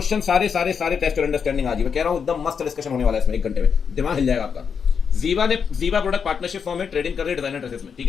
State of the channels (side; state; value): right; quieter; 6.6 dB